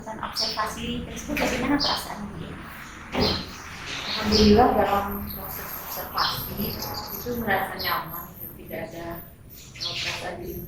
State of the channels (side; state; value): both; identical; correlation 1.00